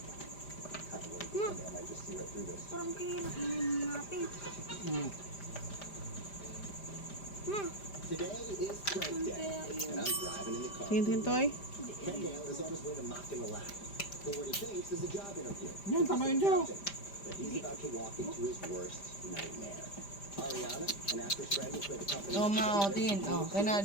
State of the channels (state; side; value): late; right; 5.0 ms